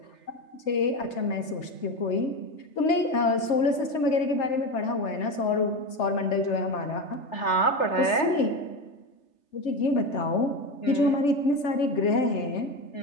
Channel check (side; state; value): right; late; 3.3 ms